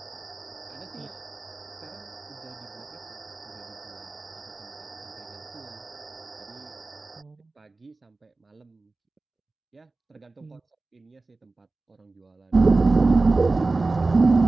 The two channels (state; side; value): quieter; left; 3.4 dB